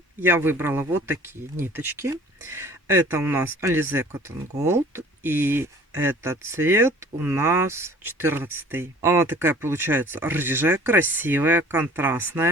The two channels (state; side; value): normal; both; correlation 0.49